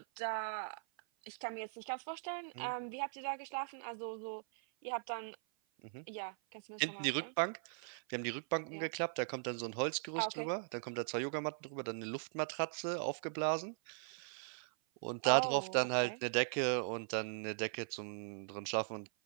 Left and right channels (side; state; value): left; silent; 51 dB below the other